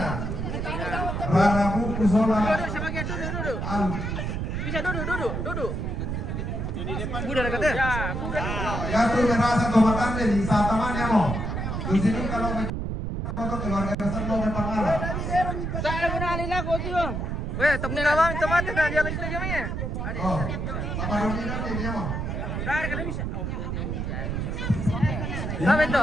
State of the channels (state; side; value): noise; right; rumble, 2 dB below the sound